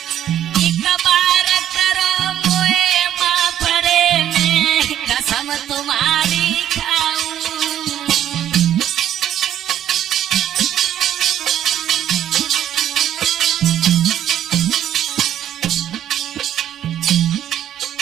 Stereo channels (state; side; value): quieter; left; 10.9 dB